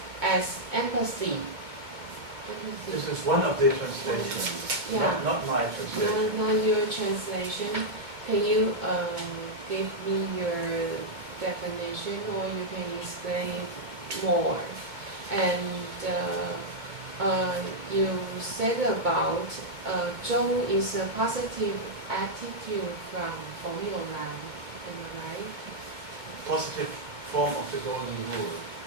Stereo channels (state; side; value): late; left; 2.2 ms